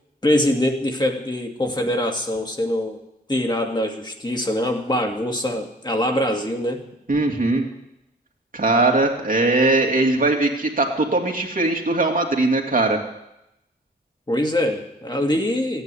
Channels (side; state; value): both; normal; correlation 0.48